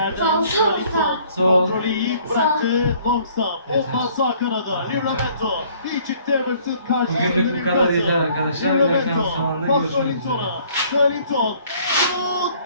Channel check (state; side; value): inverted; both; correlation -0.58